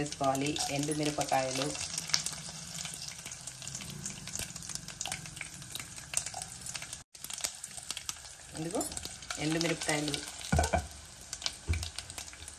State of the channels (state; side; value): identical; both; correlation 1.00